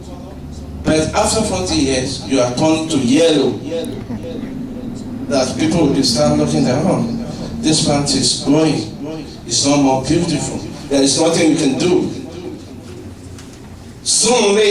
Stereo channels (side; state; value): both; identical; correlation 1.00